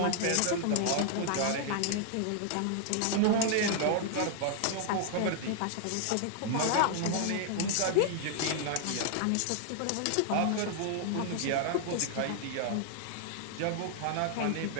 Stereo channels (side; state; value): both; different; correlation 0.00